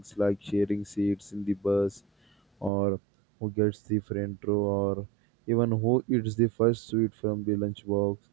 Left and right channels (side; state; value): left; drops out; at 2.7 s